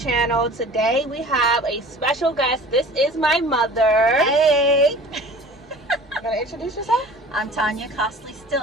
Today we have a special guest. This is my mother. Hey! You gotta introduce yourself? I'm Tanya Costley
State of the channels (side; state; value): both; normal; correlation 0.44